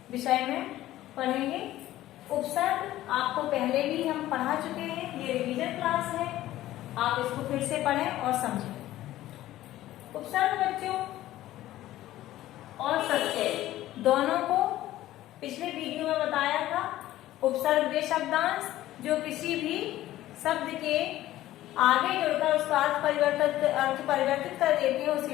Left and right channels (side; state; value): right; quieter; 14.7 dB